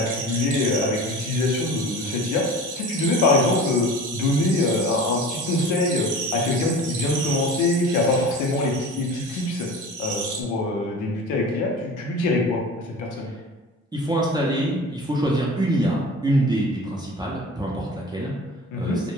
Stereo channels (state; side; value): normal; both; correlation 0.37